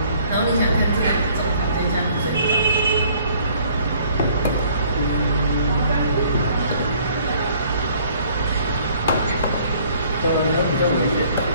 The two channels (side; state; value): both; inverted; correlation -0.58